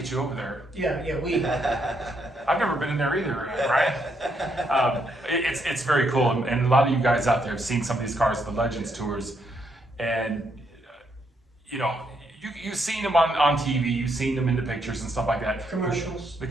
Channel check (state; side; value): normal; both; correlation 0.76